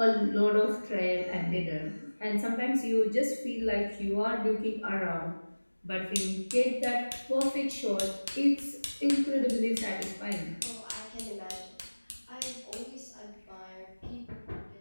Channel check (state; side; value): inverted; both; correlation -1.00